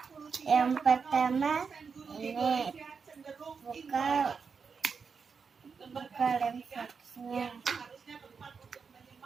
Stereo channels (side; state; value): left; quieter; 5.6 dB